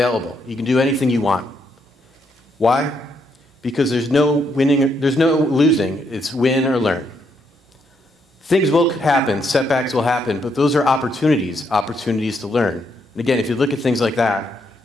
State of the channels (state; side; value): normal; both; correlation 0.76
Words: You can do anything you want. Why? Because there's no winning, there's no losing. It's win or learn. Things will happen, setbacks will happen, but those are opportunities to learn. And again, if you look at things like that,